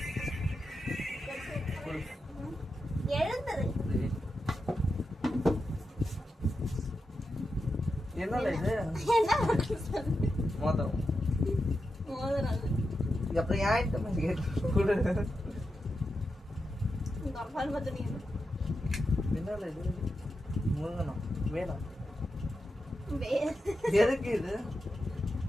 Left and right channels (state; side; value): normal; both; correlation 0.88